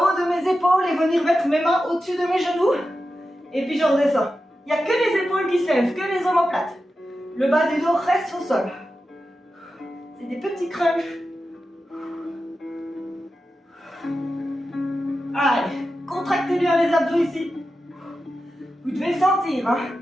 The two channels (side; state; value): both; normal; correlation 0.91